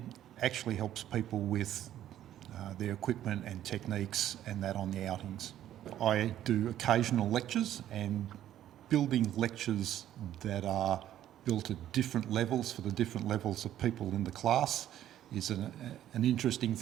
actually helps people with their equipment and techniques and that on the outings. I do occasional lectures, and building lectures that are built at different levels for the different levels of people in the class is an interesting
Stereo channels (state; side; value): quieter; left; 11.9 dB